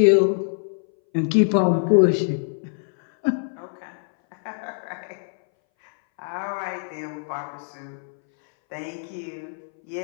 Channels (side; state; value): right; silent; 61 dB below the other